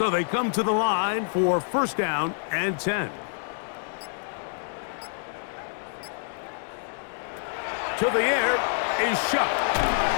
they come to the line for 1st down and 10. To the air is Shuck.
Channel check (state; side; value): silent; right; 60 dB below the other